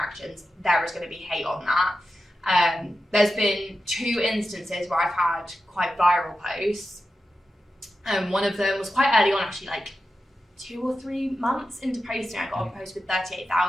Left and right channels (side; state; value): both; normal; correlation 0.91